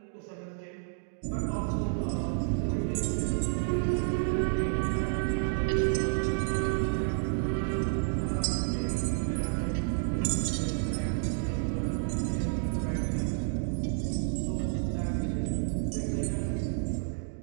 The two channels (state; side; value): silent; left; digital silence